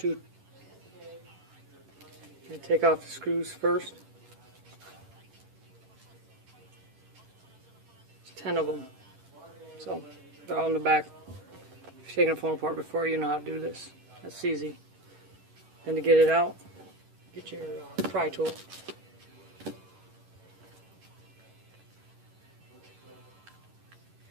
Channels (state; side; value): late; left; 11 ms